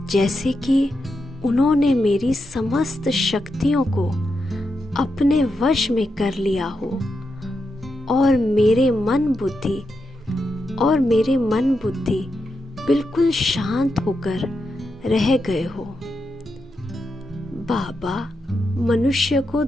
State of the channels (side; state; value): both; normal; correlation 0.86